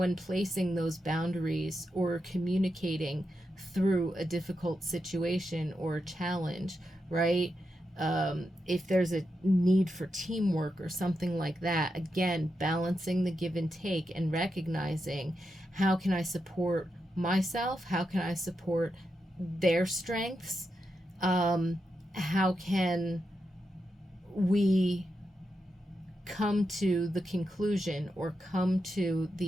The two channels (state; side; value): normal; both; correlation 0.86